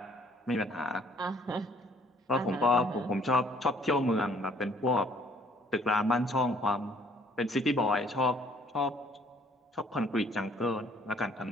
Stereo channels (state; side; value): normal; both; correlation 0.60